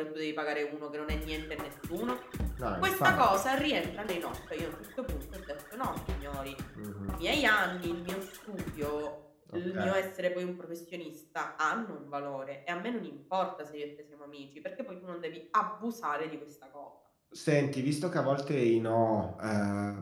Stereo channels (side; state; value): both; identical; correlation 1.00